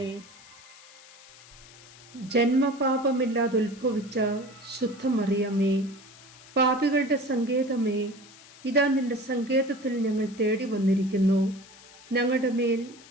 ജന്മപാപമില്ലാതെ ഉത്ഭവിച്ച ശുദ്ധമറിയമേ, പാപികളുടെ സങ്കേതമേ, ഇതാ നിന്റെ സങ്കേതത്തിൽ ഞങ്ങൾ തേടി വന്നിരിക്കുന്നു. ഞങ്ങളുടെ മേൽ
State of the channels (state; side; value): noise; left; hiss, 21 dB below the sound